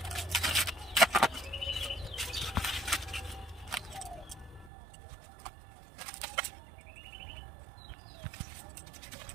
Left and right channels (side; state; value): left; drops out; at 4.7 s